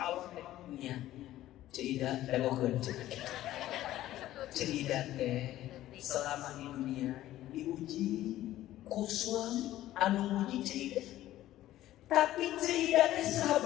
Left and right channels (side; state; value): right; quieter; 14.2 dB